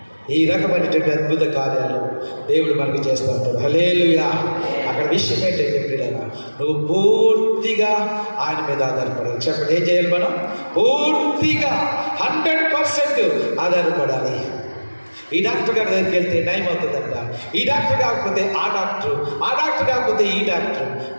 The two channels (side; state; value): both; inverted; correlation -1.00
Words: ఈ రకమైనటువంటి అద్భుత కార్యాలు దేవుడు మనకి చేస్తూ ఉంటాడు. హల్లెలూయా. అక్కడ విషయం ఏంటంటే పిల్లగా నువ్వు పూర్తిగా ఆయన మీద ఆధారపడాలి. చెప్పండి, ఏం చేయాలి? మనం పూర్తిగా 100% ఆధారపడాలి. ఈ డాక్టర్ గారి దగ్గరికి వెళ్తే నయం అవుతుందంట, ఈ డాక్టర్ కాకపోతే ఆ డాక్టర్, ఆ డాక్టర్ కాకపోతే ఈ డాక్టర్.